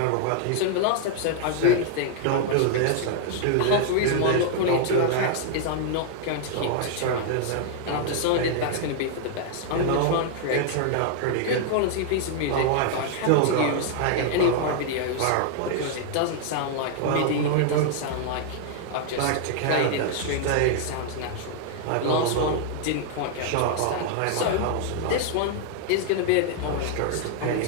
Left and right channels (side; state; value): both; different; correlation -0.01